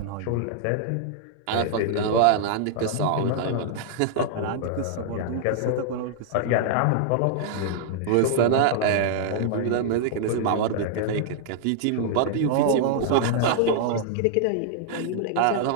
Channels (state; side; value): different; both; correlation -0.01